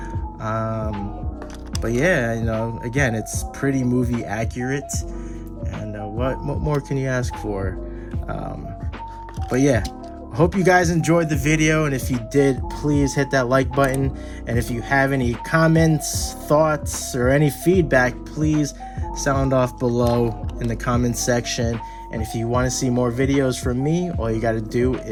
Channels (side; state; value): both; identical; correlation 1.00